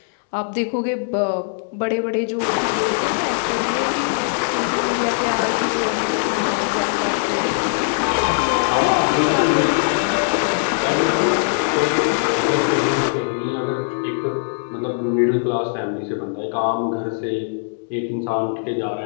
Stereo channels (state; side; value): silent; right; digital silence